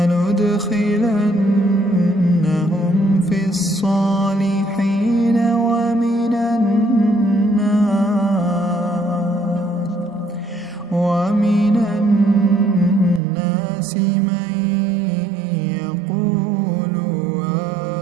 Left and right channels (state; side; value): drops out; left; at 13.2 s